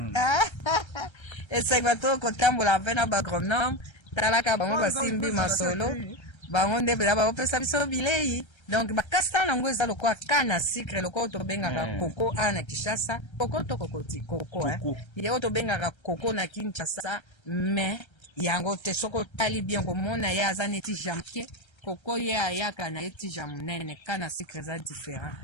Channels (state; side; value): late; right; 1.3 ms